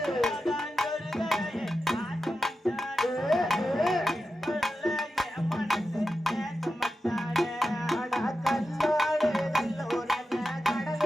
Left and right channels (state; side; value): normal; both; correlation 0.91